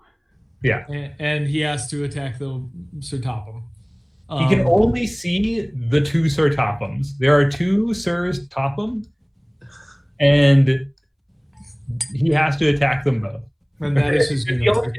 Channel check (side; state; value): both; identical; correlation 1.00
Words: Yeah. And he has to attack the Sir Topham. He can only see the 2 Sir Tophams. There are 2 Sirs Topham, and he has to attack them both. And that is his The only universe.